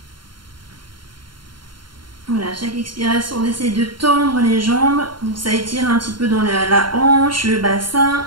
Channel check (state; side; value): late; left; 0.72 ms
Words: Voilà, chaque expiration, on essaie de tendre les jambes. Donc ça étire un petit peu dans la hanche, le bassin,